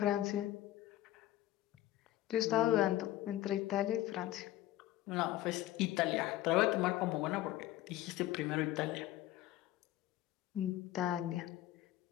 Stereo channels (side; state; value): right; quieter; 14.8 dB